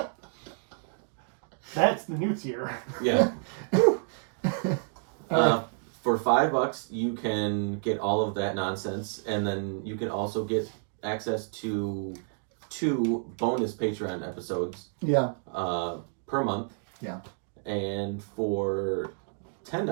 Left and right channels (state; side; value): silent; left; 58 dB below the other